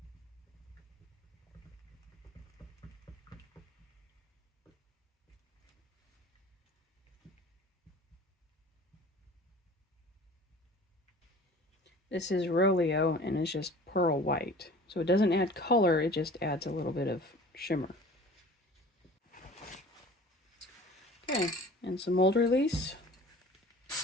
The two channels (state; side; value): normal; both; correlation 0.44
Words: This is Roleo, and it's just pearl white. So it doesn't add color, it just adds a little bit of shimmer. Okay, and some mold release.